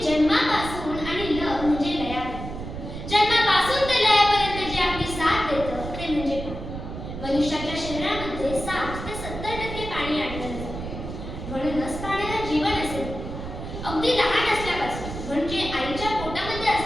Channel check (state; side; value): noise; right; rumble, 8 dB below the sound